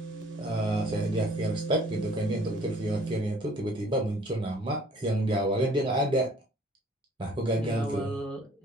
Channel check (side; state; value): both; normal; correlation 0.55